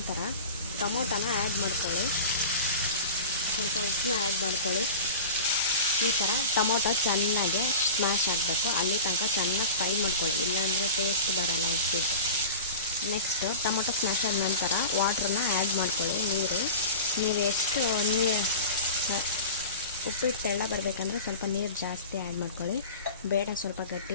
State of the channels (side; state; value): both; inverted; correlation -0.33